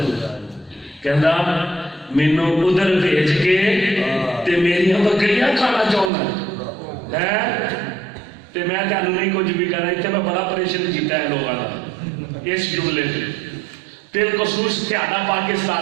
کہنا مینوں ادھر بھیج کے تے میری بکریاں کھانا چاہنا ہے تے میں تانوں نہیں کچھ بھی کرنا تے میں بڑا پریشان کیتا ہے لوگاں اس جملے تے بالخصوص تہاڈا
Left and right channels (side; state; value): left; drops out; at 6.1 s